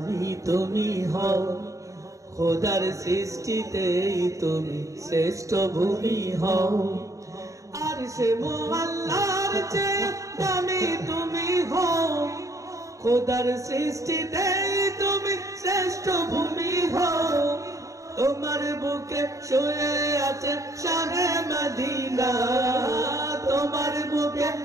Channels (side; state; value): left; late; 0.16 ms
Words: তুমি হও খোদার সৃষ্টিতেই তুমি শ্রেষ্ঠ ভূমি হও আরশে মোআল্লার চেয়ে দামি তুমি হও খোদার সৃষ্টিতেই তুমি শ্রেষ্ঠ ভূমি হও তোমার বুকে শুয়ে আছে শাহে মদিনা তোমার বুকে